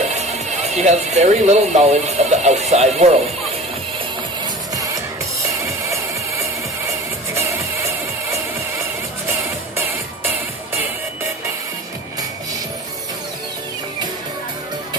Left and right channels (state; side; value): normal; both; correlation 0.38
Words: She has very little knowledge of the outside world.